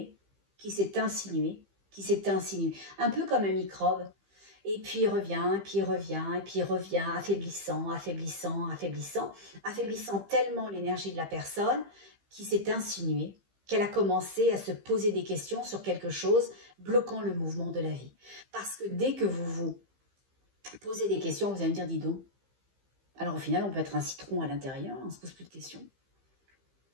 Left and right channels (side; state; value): left; late; 15 ms